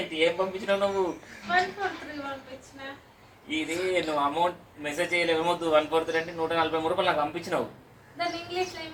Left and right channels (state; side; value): identical; both; correlation 1.00